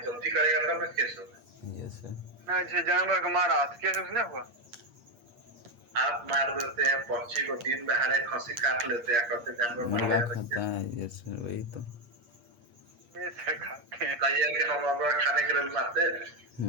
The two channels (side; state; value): left; late; 8.4 ms